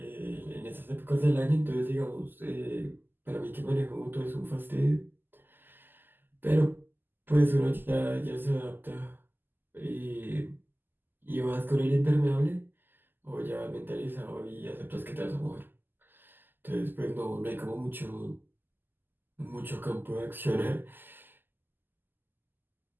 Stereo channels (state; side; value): late; left; 0.093 ms